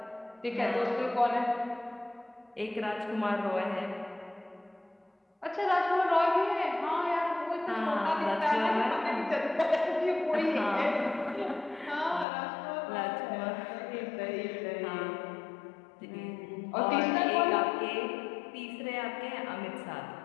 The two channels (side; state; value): right; drops out; at 12.2 s